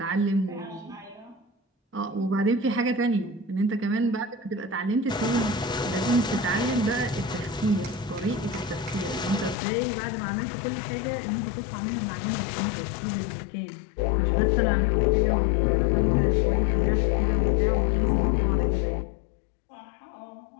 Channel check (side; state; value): right; drops out; at 9.6 s